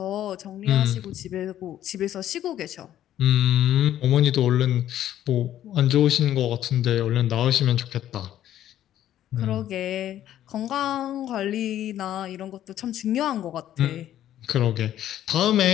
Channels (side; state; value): right; quieter; 11.9 dB